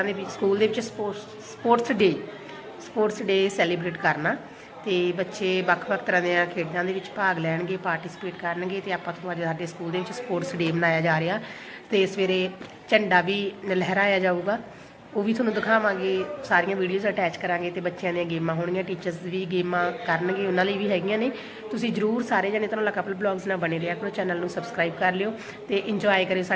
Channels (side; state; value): both; identical; correlation 1.00